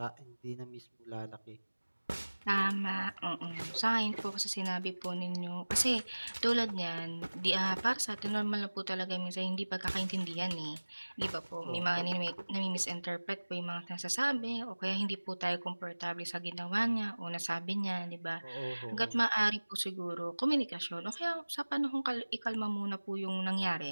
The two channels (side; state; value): both; inverted; correlation -1.00